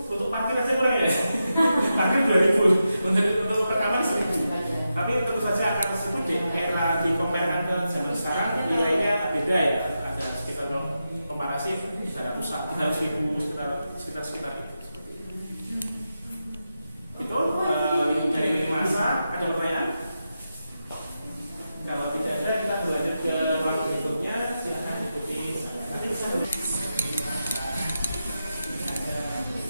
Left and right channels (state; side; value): inverted; both; correlation -0.89